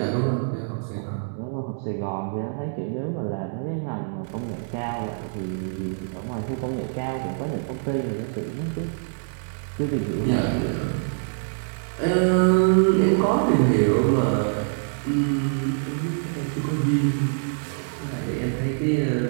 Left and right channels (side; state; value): left; silent; 61 dB below the other